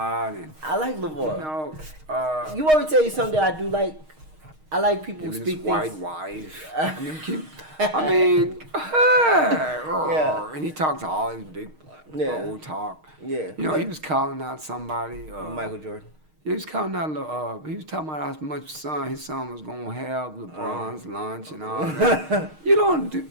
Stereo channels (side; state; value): left; late; 6.5 ms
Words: and I like LeVar. you You want me to tell you something that I do like? I like people who his speak white things. wife. Yeah. And he talks all his big old talk. Yeah. He was calling out somebody. Michael Jordan. He was calling out. He was talking about how much his son was gonna have LeBron's lunch and all that. You don't do,